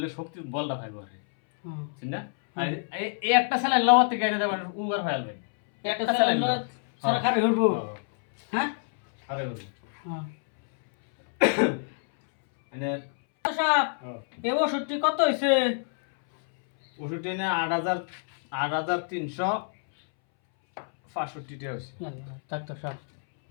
শক্তি বলটা পাইবো আর হ্যাঁ। ঠিক না আর এই একটা স্যালাইন লওয়ার থেকে এটা দেবেন উগার হয়ে যাবে একটা একটা স্যালাইন স্যালাইন সারা খাবে হইব হ্যাঁ আরে বলি হ্যাঁ মানে ডাক্তার সাহেব এই ওষুধটি কত হয়েছে ওষুধটা এনে 8,365 টাকা হয়েছে ডাক্তার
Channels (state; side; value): silent; right; 60 dB below the other